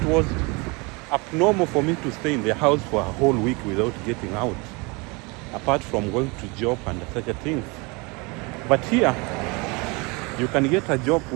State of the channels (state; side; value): quieter; left; 28.1 dB